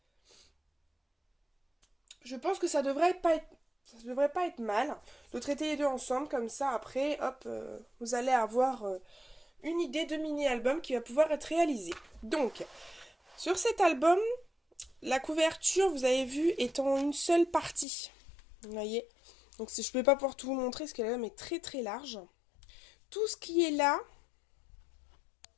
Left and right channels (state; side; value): drops out; right; at 17.9 s